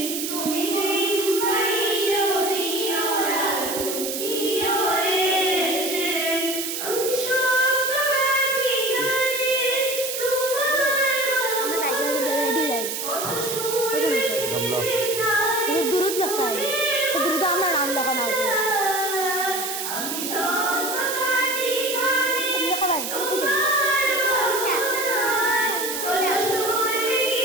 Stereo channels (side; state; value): right; noise; hiss, 4 dB below the sound